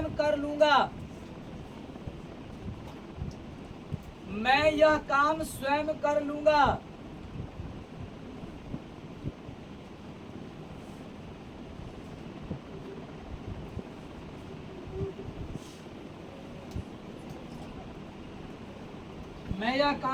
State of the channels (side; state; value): both; identical; correlation 1.00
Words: कर लूंगा। मैं यह काम स्वयं कर लूंगा। मैं यह